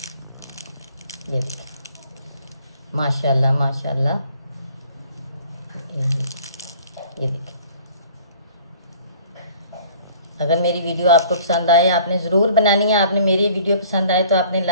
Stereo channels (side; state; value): both; inverted; correlation -0.52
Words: देखिए, माशाल्लाह माशाल्लाह। ये देखिए, अगर मेरी वीडियो आपको पसंद आए, आपने ज़रूर बनानी है। आपने मेरी वीडियो पसंद आए तो आपने